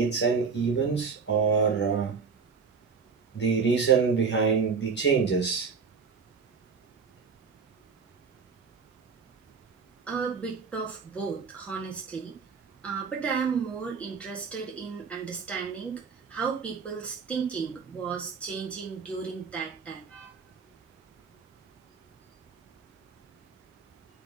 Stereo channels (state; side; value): quieter; left; 5.4 dB